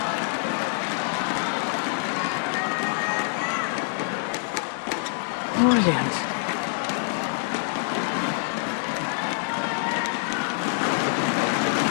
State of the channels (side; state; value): right; silent; digital silence